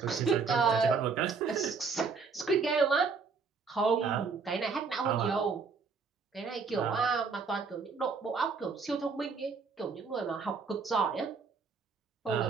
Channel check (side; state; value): left; quieter; 5.1 dB